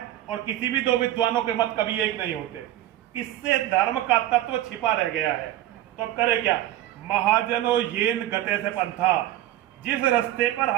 और किसी भी दो विद्वानों के मत कभी एक नहीं होते। इससे धर्म का तत्व छिपा रह गया है। तो अब करे क्या? महाजनो येन गते से पंथा, जिस रास्ते पर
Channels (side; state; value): left; quieter; 13.5 dB